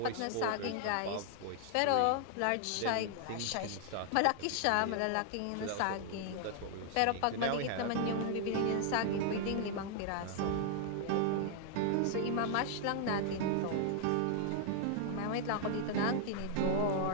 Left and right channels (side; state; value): both; different; correlation 0.00